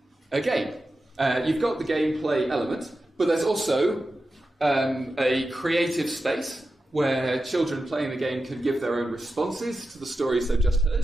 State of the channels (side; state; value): both; normal; correlation 0.91